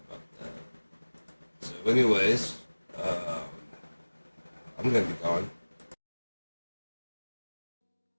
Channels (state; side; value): inverted; both; correlation -1.00